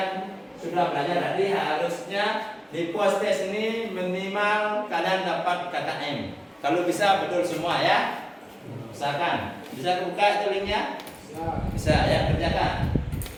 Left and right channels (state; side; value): identical; both; correlation 1.00